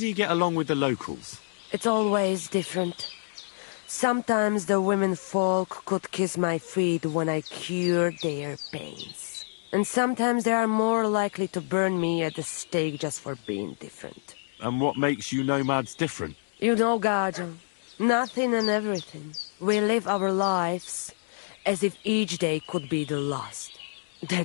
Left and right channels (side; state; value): right; silent; digital silence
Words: you get along with the locals? It's always different. Sometimes the women folk could kiss my feet when I cured their pains. And sometimes they are more likely to burn me at the stake just for being different. And what makes you nomads different? You know, Gajo, nothing and everything. We live our lives as if each day could be the last.